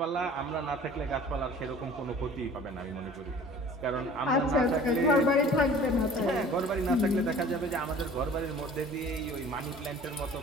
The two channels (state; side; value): normal; both; correlation 0.47